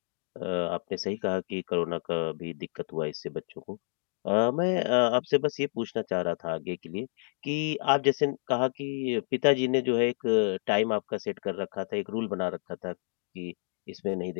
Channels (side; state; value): right; silent; digital silence